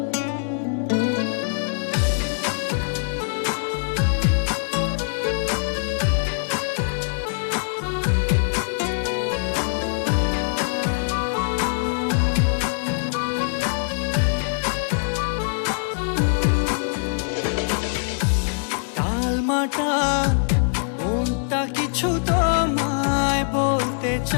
টালমাটাল মনটা কিছু তোমায় বলতে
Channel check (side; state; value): right; silent; digital silence